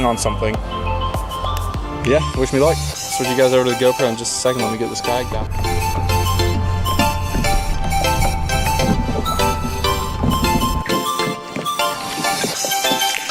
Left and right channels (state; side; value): identical; both; correlation 1.00